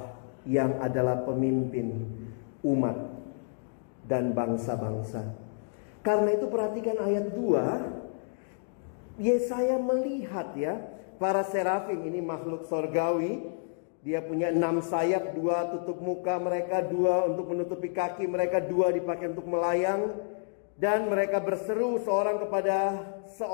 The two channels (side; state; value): right; silent; digital silence